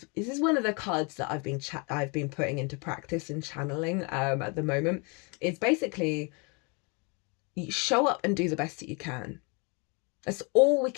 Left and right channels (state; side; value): quieter; right; 32.2 dB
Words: is one of the cards that I've been putting into practice and channeling at the moment. It's basically, you show up and do the best that you can. That's all we